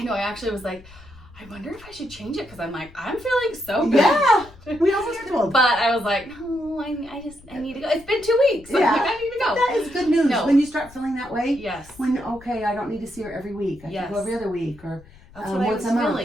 know. I actually was like, I wonder if I should change it because I'm like, I'm feeling so good. Yeah. We almost told. But I was like, no, I need to go. It's been 2 weeks. Yeah. I'm like, I need to go. That is good news. No. When you start feeling that way. Yes. I don't need to see her every week. I can go every other week or That's what I once was a month.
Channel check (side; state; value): left; noise; rumble, 22 dB below the sound